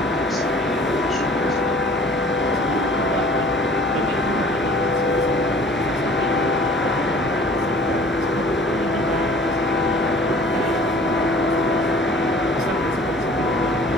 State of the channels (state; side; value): normal; both; correlation 0.49